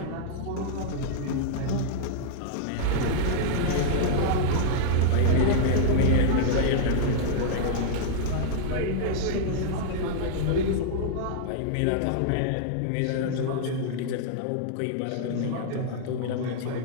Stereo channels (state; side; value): different; both; correlation -0.01